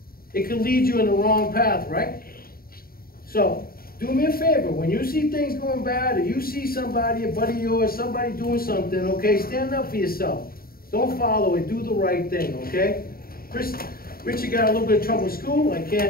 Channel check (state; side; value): late; right; 0.43 ms